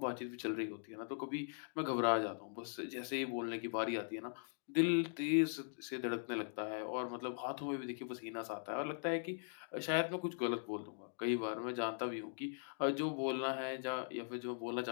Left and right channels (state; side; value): silent; right; digital silence